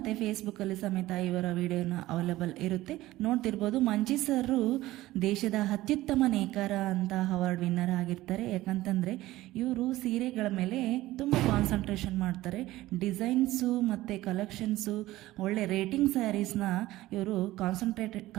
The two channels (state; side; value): quieter; left; 16.8 dB